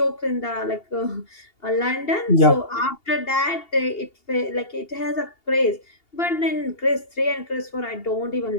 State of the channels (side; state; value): right; late; 2.8 ms